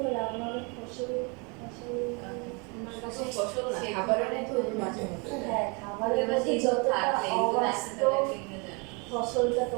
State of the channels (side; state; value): left; quieter; 31.8 dB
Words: না আমার ফসল আমার কাছে ফসল না খাবারের মধ্যে ওদের মাঝে মধ্যে দেয়। হ্যাঁ খাবারের মধ্যে যতটা অবাস্তব ফসলটা